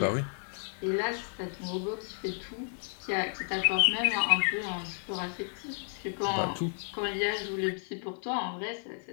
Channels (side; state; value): right; silent; 56 dB below the other